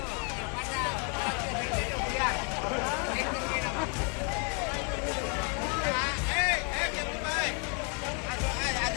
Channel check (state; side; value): quieter; right; 36.9 dB